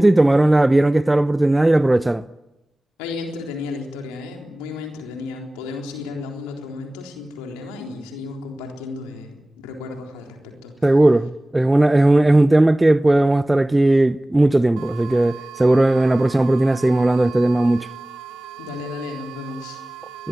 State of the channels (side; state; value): both; normal; correlation 0.98